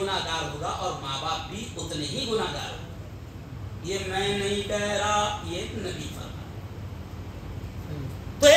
ہوگا اور ماں باپ بھی اتنے ہی گناہگار ہوگا۔ یہ میں نہیں کہہ رہا، یہ نبی فرمایا۔ تو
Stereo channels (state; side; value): identical; both; correlation 1.00